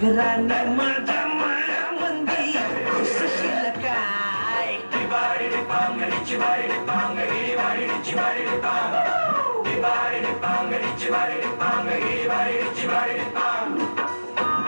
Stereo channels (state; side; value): inverted; both; correlation -1.00